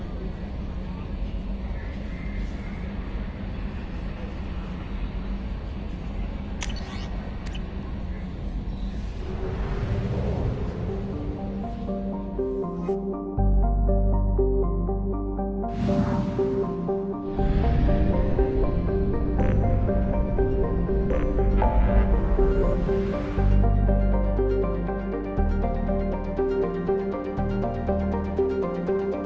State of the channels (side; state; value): both; identical; correlation 1.00